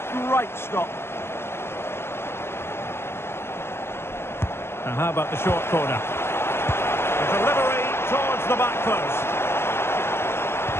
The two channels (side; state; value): right; late; 0.12 ms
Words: Great stop. Now, how about the short corner? The delivery towards the back post.